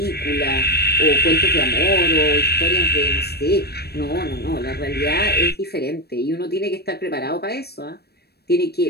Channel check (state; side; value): late; right; 0.47 ms